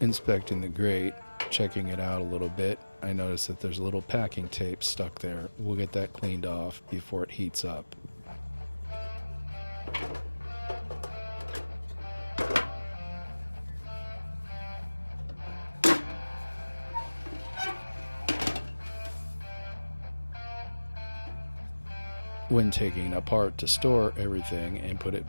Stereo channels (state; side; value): inverted; both; correlation -1.00